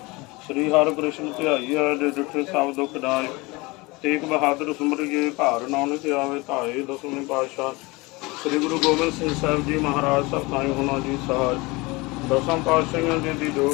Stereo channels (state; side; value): quieter; right; 24.1 dB